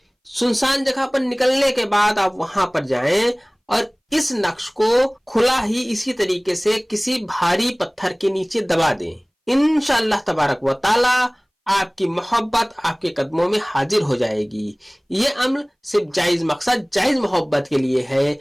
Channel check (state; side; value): identical; both; correlation 1.00